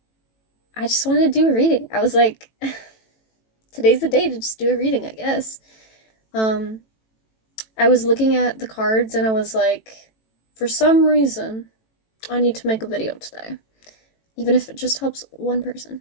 I just wanted to do a reading. I was like, today's the day to just do a reading, I guess. I was looking at the cards and I was like, for some reason, I need to make a video today. Even if it just helps one person.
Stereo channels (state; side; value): late; right; 18 ms